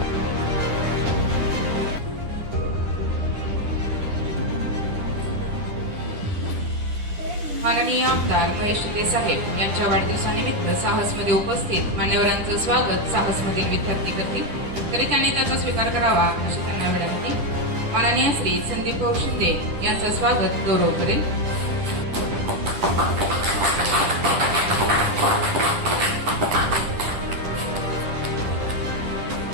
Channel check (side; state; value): left; late; 10 ms